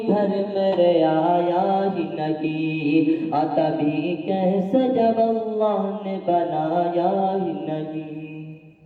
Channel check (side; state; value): both; identical; correlation 1.00